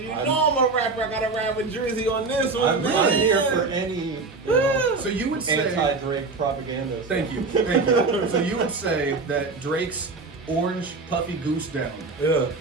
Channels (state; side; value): quieter; left; 3.9 dB